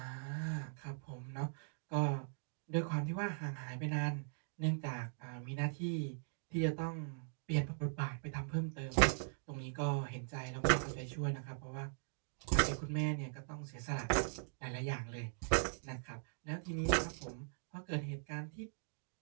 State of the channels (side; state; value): left; silent; digital silence